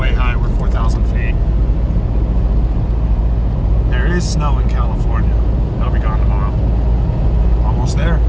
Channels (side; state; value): both; identical; correlation 1.00